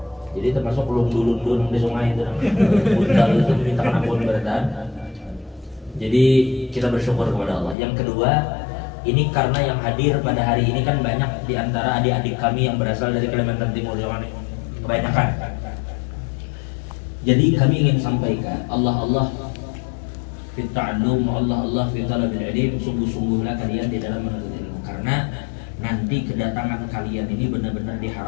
Jadi termasuk lundul-lundul di sungai itu, undal itu memintakan ampun berataan. Jadi kita bersyukur kepada Allah. Yang kedua, ini karena yang hadir pada hari ini kan banyak di antara adik-adik kami yang berasal dari Kalimantan Timur, kebanyakan. Jadi kami ingin sampaikan, Allah fit ta'allum, Allah fit talabil ilm, sungguh-sungguhlah kalian di dalam menuntut ilmu, karena nanti kedatangan kalian ini benar-benar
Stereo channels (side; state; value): right; drops out; at 7.8 s